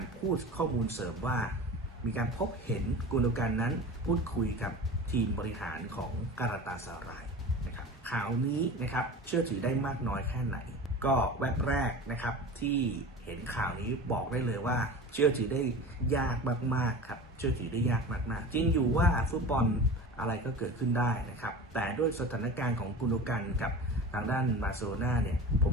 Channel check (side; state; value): both; normal; correlation 0.34